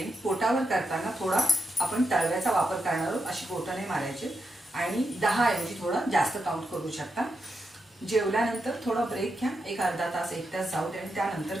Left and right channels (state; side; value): normal; both; correlation 0.85